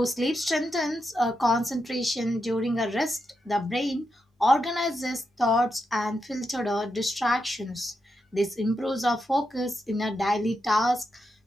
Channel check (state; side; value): normal; both; correlation 0.85